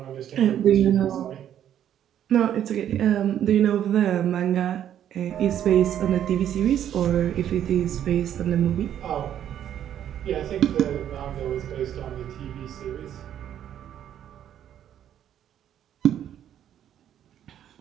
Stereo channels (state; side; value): quieter; left; 10.4 dB